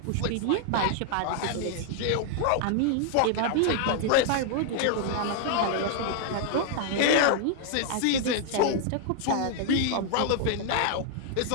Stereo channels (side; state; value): both; different; correlation 0.00